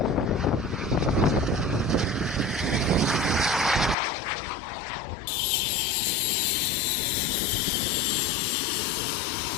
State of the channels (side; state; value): right; drops out; at 4.0 s